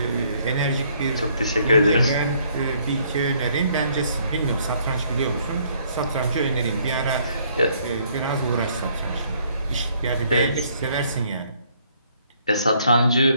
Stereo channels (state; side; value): inverted; both; correlation -0.66